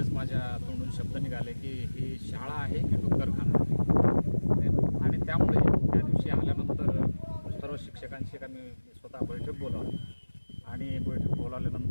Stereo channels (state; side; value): inverted; both; correlation -1.00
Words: माझ्या तोंडून शब्द निघाले की ही शाळा आहे की डुक्करखाना. आणि त्यामुळे त्या दिवशी आल्यानंतर सर्व शिक्षकांशी आम्ही स्वतः बैठक बोलावली आणि बैठक